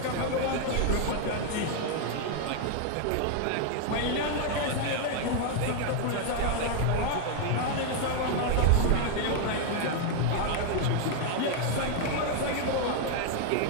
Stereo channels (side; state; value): both; different; correlation 0.00